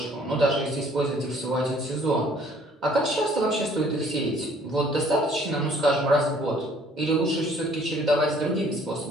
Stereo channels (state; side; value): normal; both; correlation 0.58